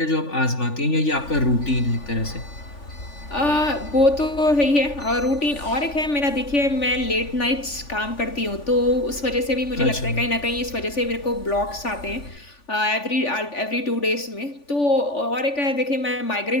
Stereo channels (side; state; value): right; late; 3.5 ms